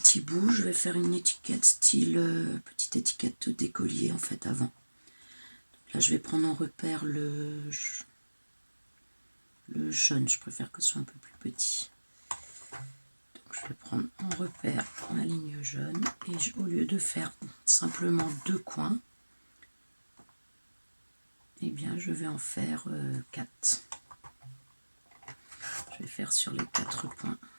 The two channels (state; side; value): inverted; both; correlation -1.00